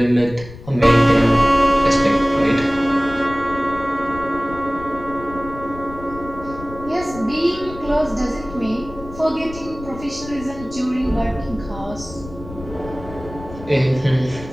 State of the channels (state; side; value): noise; left; rumble, 15 dB below the sound